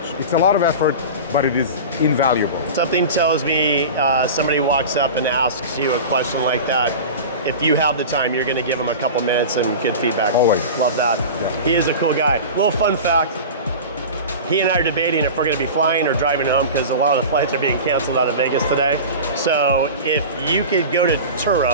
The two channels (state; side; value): inverted; both; correlation -0.31